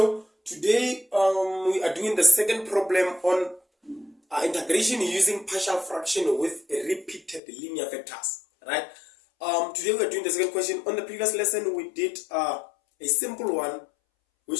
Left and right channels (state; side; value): drops out; right; at 7.4 s